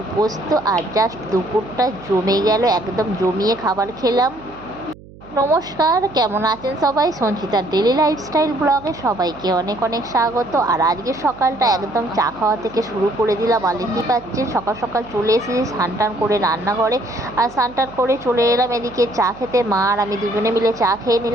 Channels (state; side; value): noise; right; hum, 20 dB below the sound